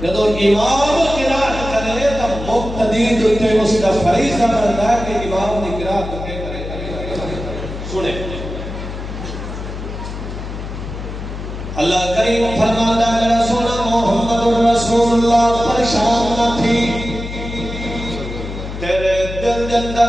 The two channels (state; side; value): noise; left; hum, 8 dB below the sound